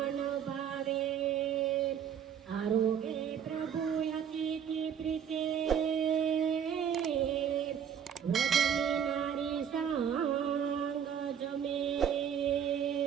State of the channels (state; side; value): quieter; left; 8.3 dB